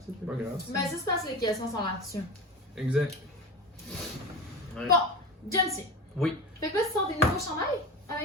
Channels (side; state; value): both; normal; correlation 0.27